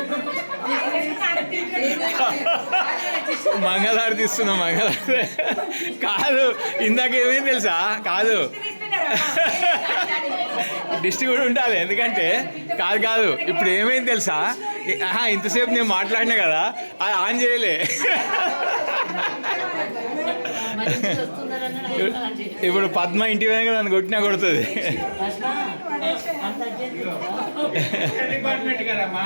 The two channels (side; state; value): both; inverted; correlation -1.00